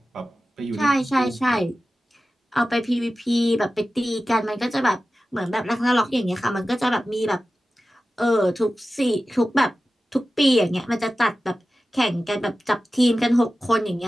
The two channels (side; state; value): both; normal; correlation 0.94